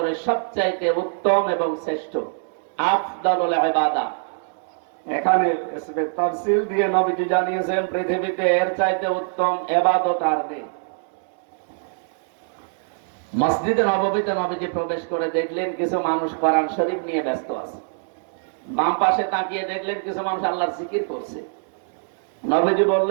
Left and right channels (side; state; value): left; silent; digital silence